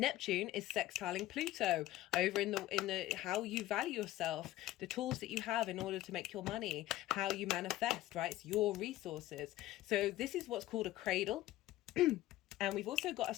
is sextiling Pluto over in the how you value yourself, the tools that you have in order to make your money, how you manifest, right? It's your resources. So this is what's called a cradle. And we've also got a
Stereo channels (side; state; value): right; quieter; 15.5 dB